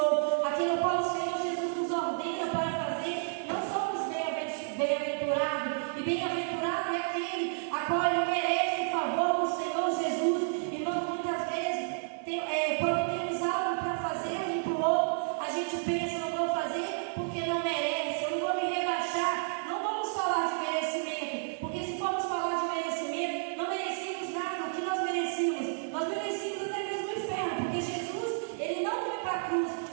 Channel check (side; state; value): left; silent; digital silence